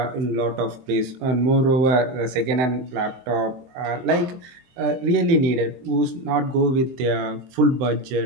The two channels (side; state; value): left; late; 23 ms